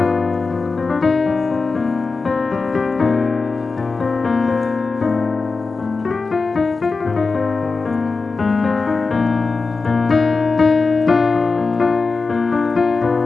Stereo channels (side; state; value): right; quieter; 4.2 dB